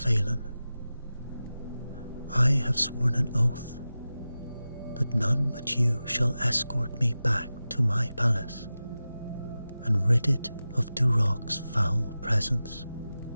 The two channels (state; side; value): inverted; both; correlation -0.94